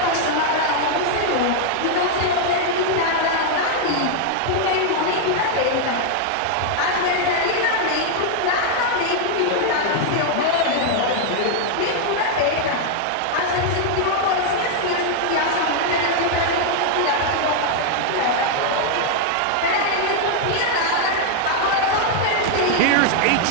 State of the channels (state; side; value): different; both; correlation 0.00